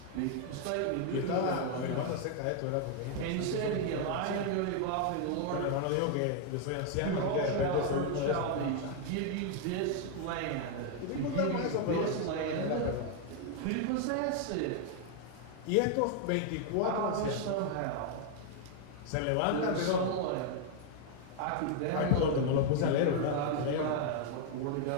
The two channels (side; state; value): both; different; correlation 0.00